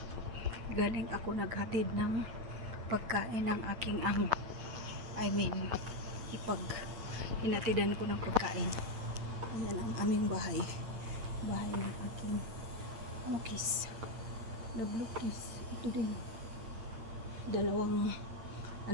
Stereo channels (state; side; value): late; left; 8.8 ms